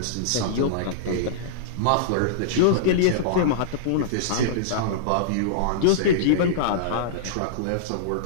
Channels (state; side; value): different; both; correlation -0.03